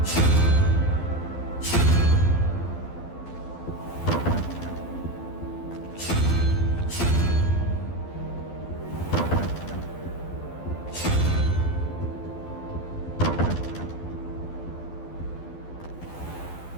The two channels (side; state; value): right; late; 12 ms